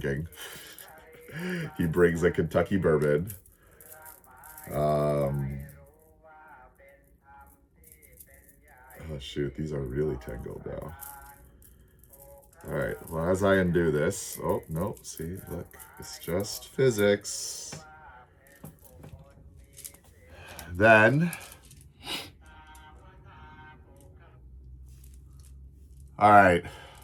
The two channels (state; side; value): identical; both; correlation 1.00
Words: He brings a Kentucky bourbon. Oh shoot, these are really tangled now. All right, well, as I undo this, oh no, see, look, it's just physics. Then, all right,